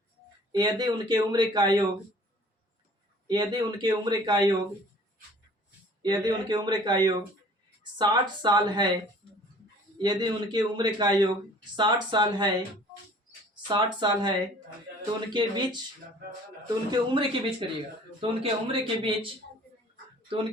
60 साल है, यदि उनके उम्र का योग 60 साल है, तो उनके उम्र के बीच करिएगा, तो उनके उम्र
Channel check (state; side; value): normal; both; correlation 0.51